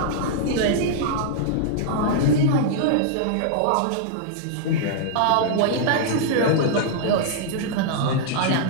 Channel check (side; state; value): both; different; correlation -0.01